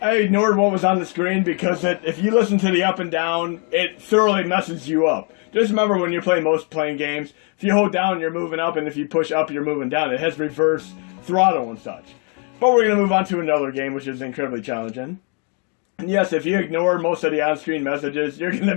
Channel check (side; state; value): right; quieter; 37.8 dB